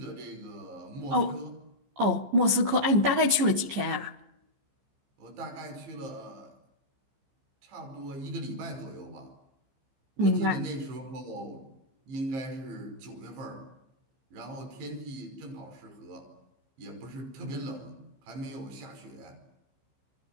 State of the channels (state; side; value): late; left; 14 ms